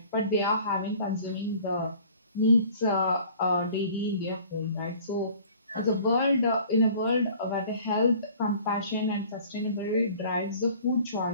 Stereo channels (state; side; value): inverted; both; correlation -0.50